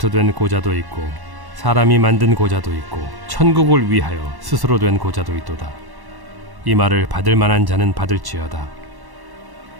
된 고자도 있고 사람이 만든 고자도 있고 천국을 위하여 스스로 된 고자도 있도다. 이 말을 받을 만한 자는 받을지어다.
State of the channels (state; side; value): late; left; 1.1 ms